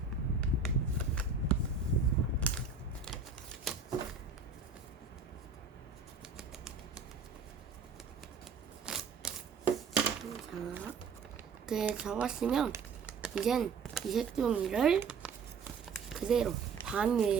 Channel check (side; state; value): left; quieter; 5.0 dB